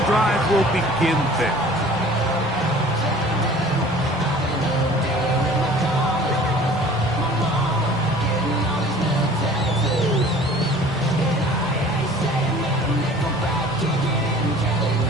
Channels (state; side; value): normal; both; correlation 0.47